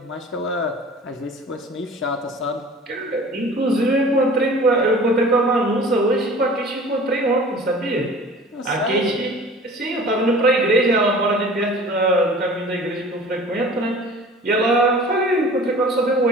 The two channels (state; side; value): normal; both; correlation 0.44